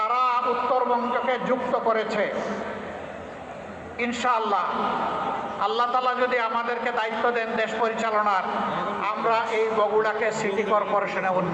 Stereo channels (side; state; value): both; identical; correlation 1.00